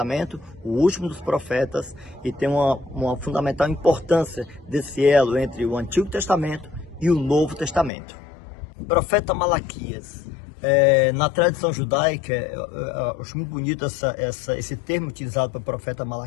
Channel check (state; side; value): drops out; right; at 7.9 s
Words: o último dos profetas, e tem uma fundamental importância desse elo entre o Antigo Testamento e o Novo Testamento. Profeta Malaquias. Na tradição judaica, eu acho muito bonito esse termo utilizado pelo profeta